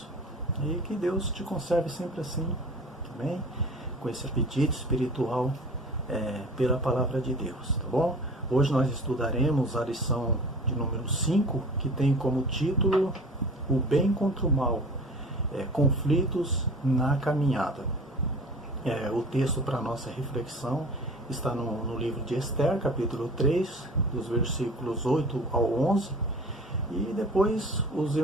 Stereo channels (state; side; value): normal; both; correlation 0.42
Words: e que Deus te conserve sempre assim, também, com esse apetite espiritual pela palavra de Deus, tá bom? Hoje nós estudaremos a lição de número 5, que tem como título O Bem contra o Mal, conflitos na caminhada. O texto para a nossa reflexão está no livro de Esther, capítulo 3, dos versículos 8 ao 11, e depois os